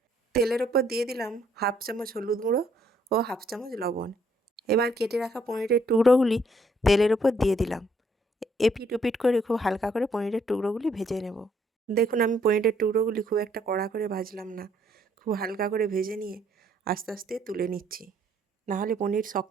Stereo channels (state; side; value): normal; both; correlation 0.68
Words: তেলের ওপর দিয়ে দিলাম 1/2 চামচ হলুদ গুঁড়ো ও 1/2 চামচ লবণ। এবার কেটে রাখা পনিরের টুকরোগুলি তেলের ওপর দিয়ে দিলাম। এপিট ওপিট করে খুব হালকা করে পনিরের টুকরোগুলি ভেজে নেব। দেখুন, আমি পনিরের টুকরোগুলি খুব একটা কড়া করে ভাজলাম না, খুব হালকা করে ভেজে নিয়ে আস্তে আস্তে তুলে নিচ্ছি, নাহলে পনির